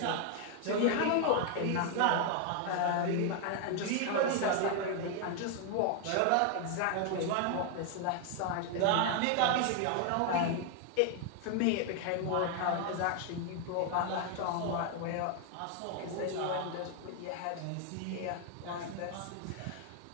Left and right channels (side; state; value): both; different; correlation 0.00